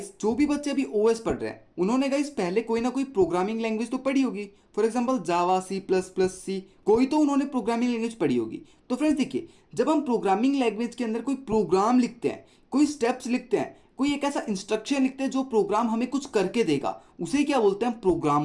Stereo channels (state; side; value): identical; both; correlation 1.00